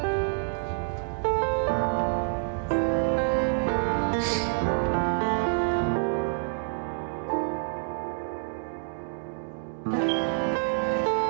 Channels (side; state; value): left; silent; digital silence